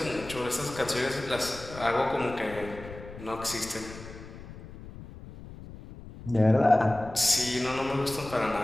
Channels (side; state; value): left; noise; rumble, 15 dB below the sound